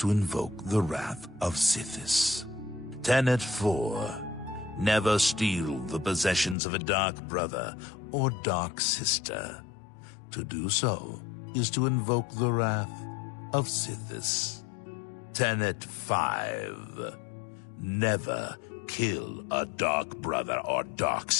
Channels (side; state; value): right; drops out; at 6.6 s